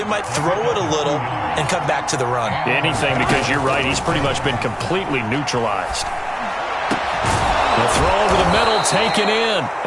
might throw it a little and come back to the run. Anything, because you're right. He's pretty much been completely neutralized. The throw over the middle, taken in.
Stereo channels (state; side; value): identical; both; correlation 1.00